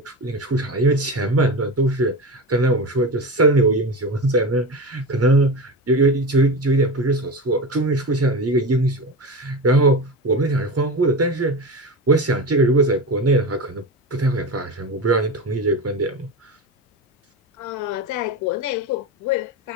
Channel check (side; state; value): both; normal; correlation 0.24